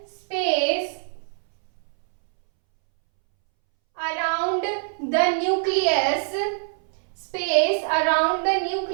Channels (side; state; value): left; silent; 63 dB below the other